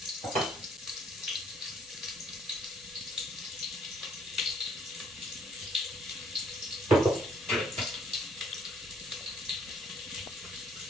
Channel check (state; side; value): normal; both; correlation 0.65